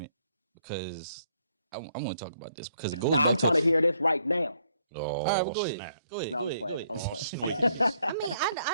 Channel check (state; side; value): inverted; both; correlation -0.70